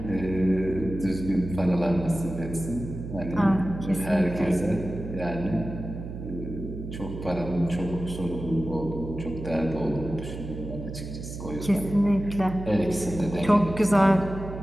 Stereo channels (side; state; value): right; noise; hum, 9 dB below the sound